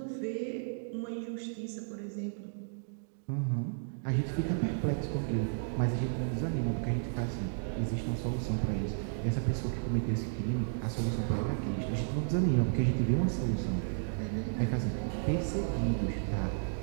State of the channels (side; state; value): left; silent; digital silence